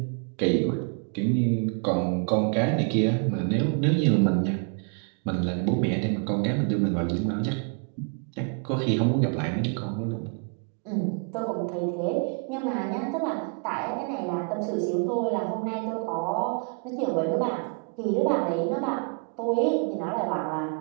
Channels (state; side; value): quieter; left; 39.5 dB